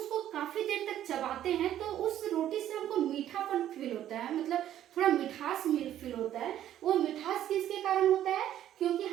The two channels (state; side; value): quieter; left; 11.6 dB